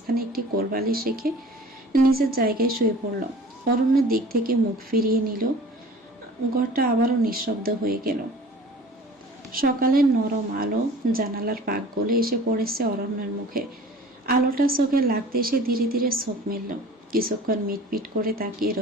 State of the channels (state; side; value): normal; both; correlation 0.44